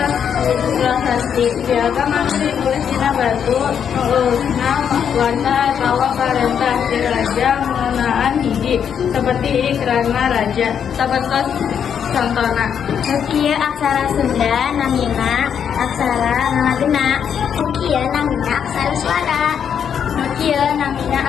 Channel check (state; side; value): quieter; right; 8.0 dB